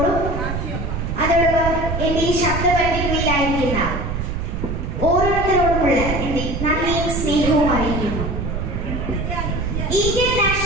അതോടൊപ്പം എന്റെ ഈ ശബ്ദപരിധികളിലായിരിക്കുന്ന ഓരോരുത്തരോടുമുള്ള എന്റെ നന്ദിയും സ്നേഹവും അറിയിക്കുന്നു. ഇന്ത്യൻ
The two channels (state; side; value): noise; right; rumble, 3 dB below the sound